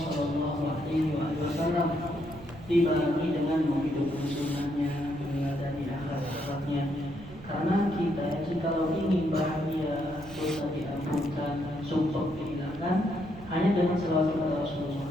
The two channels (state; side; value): noise; right; rumble, 17 dB below the sound